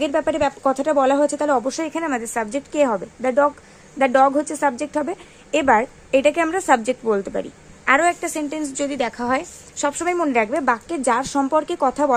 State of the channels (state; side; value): identical; both; correlation 1.00